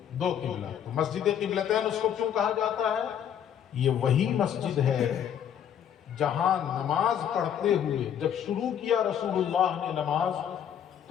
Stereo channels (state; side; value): quieter; right; 9.2 dB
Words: دو قبلہ. تو مسجد قبلتین اس کو کیوں کہا جاتا ہے؟ یہ وہی مسجد ہے جہاں نماز پڑھتے ہوئے جب شروع کیا رسول اللہ نے نماز